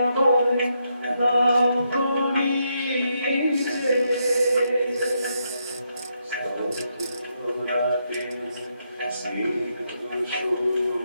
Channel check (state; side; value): inverted; both; correlation -0.80